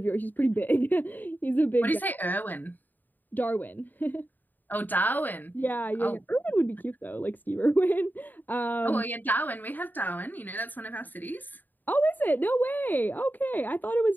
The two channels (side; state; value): right; late; 0.088 ms